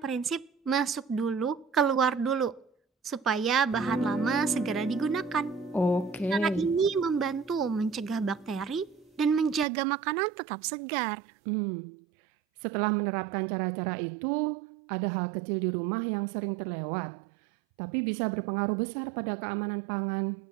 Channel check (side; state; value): left; drops out; at 9.7 s